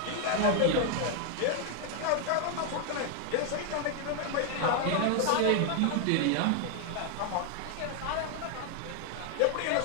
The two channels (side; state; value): both; different; correlation 0.00